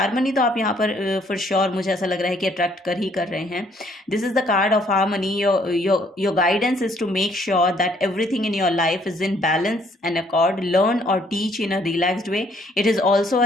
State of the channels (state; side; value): normal; both; correlation 0.65